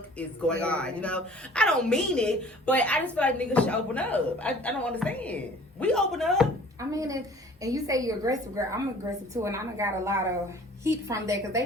is going on, you know? I don't mean it, but I just feel like niggas should open up. I don't understand. We open up. I mean, and you say you're aggressive, girl. I'm aggressive too, and I done got a lot of heat from that because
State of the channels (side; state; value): both; normal; correlation 0.50